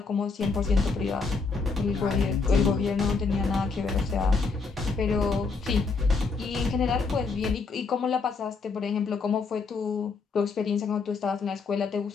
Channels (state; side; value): quieter; right; 4.5 dB